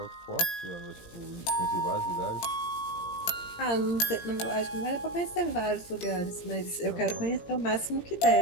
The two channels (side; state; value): right; late; 17 ms